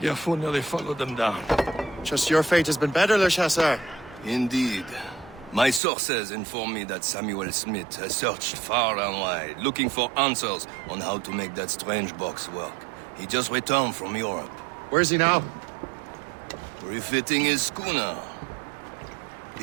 nearly followed them down. Just your fate has been better, Le Chasseur. Indeed. My sources inform me that Samuel Smith has searched far and wide, looking for answers on how to make that strange box work. He just returned from Europe. Where's he now? Refitting his schooner.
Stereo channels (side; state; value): left; drops out; at 5.8 s